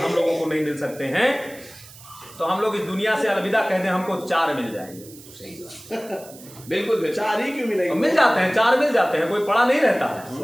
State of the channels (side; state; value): right; noise; hiss, 20 dB below the sound